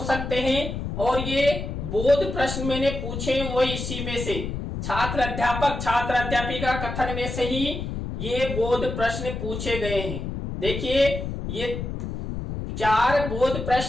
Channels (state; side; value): noise; left; rumble, 5 dB below the sound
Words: सकते हैं और ये बोध प्रश्न मैंने पूछे वही इसी में से छात्र अध्यापक छात्र अध्यापिका कथन में से ही ये बोध प्रश्न पूछे गए हैं। देखिए ये 4 बोध